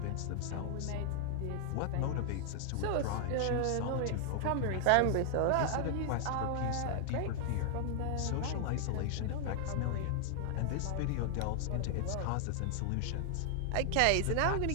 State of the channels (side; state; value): both; different; correlation 0.00